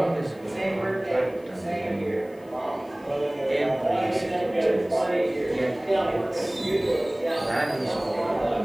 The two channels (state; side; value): noise; left; hiss, 30 dB below the sound